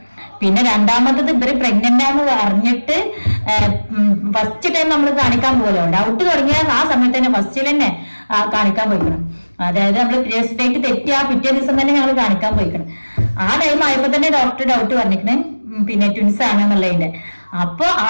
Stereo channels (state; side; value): inverted; both; correlation -1.00